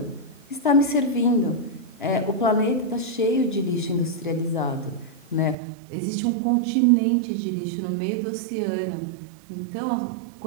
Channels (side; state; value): left; drops out; at 5.6 s